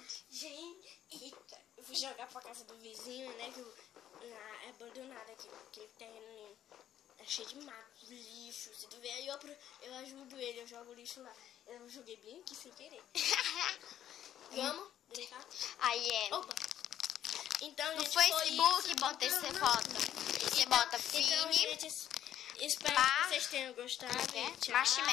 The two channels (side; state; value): right; quieter; 11.1 dB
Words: Gente, eita, eu fui jogar pra casa do vizinho, né? Que é abandonado aqui, aquele terreno é cheio de mato, lixo. Se tu ver aí, eu ajudo ele, eu jogo lixo lá. Eu joguei bem aqui sem querer. Vamos brincar? Aí é. Opa! Então, No gente, foi Facebook, isso. bota essa foto. Você bota Então, Fini, gente, espero Bar- que vocês tenham gostado. Tchau.